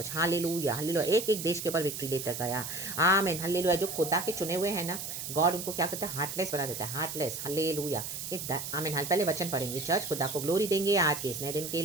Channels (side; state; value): right; noise; hiss, 6 dB below the sound